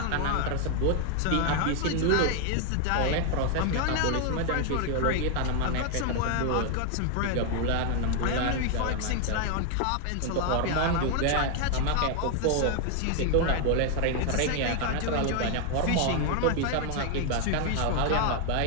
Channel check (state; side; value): different; both; correlation 0.01